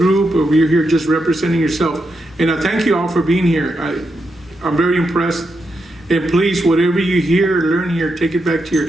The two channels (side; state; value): both; normal; correlation 0.84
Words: or you're here just representing yourself. And I thank you all for being here. I'm very impressed. And please, whatever you hear or learn here, take it back to your